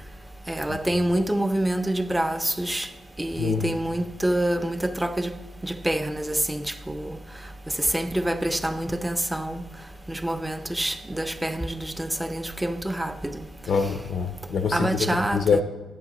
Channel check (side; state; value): both; normal; correlation 0.90